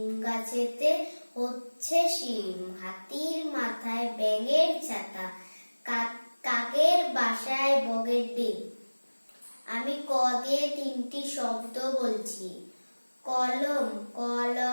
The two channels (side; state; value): both; inverted; correlation -1.00